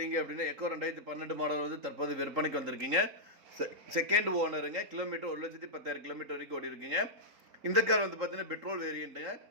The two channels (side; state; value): left; late; 3.8 ms